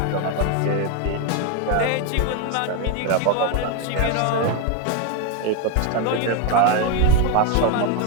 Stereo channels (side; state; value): both; different; correlation 0.01